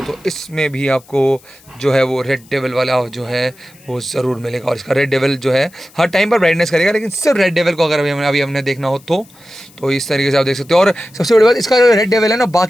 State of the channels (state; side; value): noise; left; hiss, 27 dB below the sound